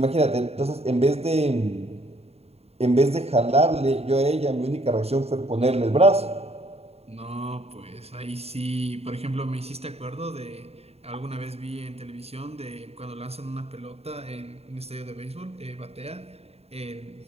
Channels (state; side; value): late; left; 0.30 ms